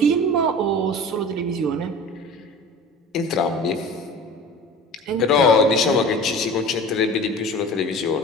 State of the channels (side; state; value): both; normal; correlation 0.38